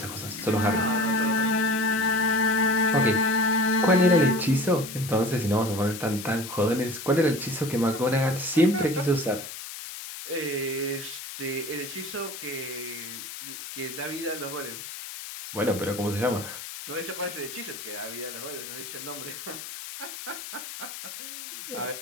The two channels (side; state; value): left; noise; hiss, 10 dB below the sound